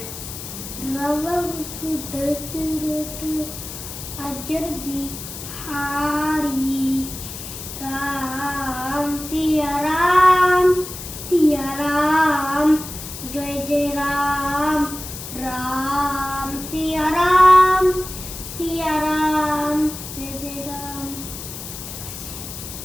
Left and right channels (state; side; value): noise; left; hiss, 10 dB below the sound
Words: রাম সিয়া রাম, সিয়া রাম, জয় জয় রাম, রাম সিয়া রাম, সিয়া রাম, জয় জয় রাম।